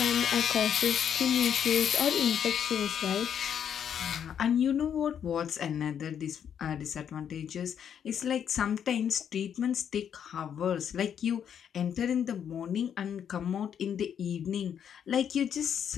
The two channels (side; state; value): right; quieter; 8.5 dB